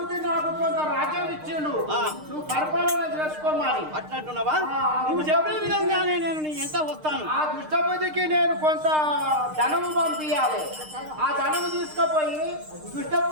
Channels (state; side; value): late; left; 6.5 ms